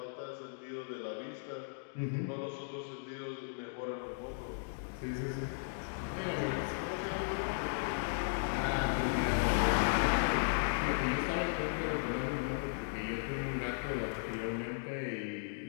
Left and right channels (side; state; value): right; silent; digital silence